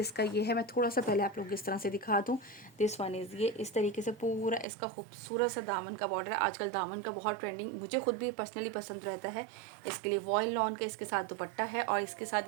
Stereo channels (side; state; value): left; drops out; at 4.7 s